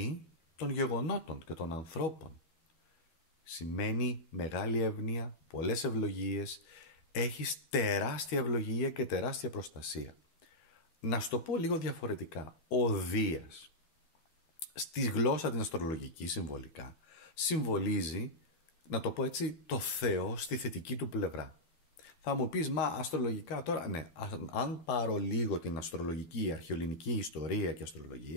των γεγονότων και των ανθρώπων. Σημαίνει μεγάλη εύνοια, πολλές ευλογίες, έχεις τεράστια ευλογία και τεράστια προστασία. Να σου το πω λίγο διαφορετικά. Ο Δίας, στη γλώσσα την αστρολογική συμβολικά, συμβολίζει, να το πω έτσι, το Θεό στη θετική του πλευρά. Θα μου πεις, μα αστρολογικά τώρα, ναι, αν πάρω λίγο την αστρολογική, αρχαιοελληνική ιστορία και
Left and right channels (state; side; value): late; right; 12 ms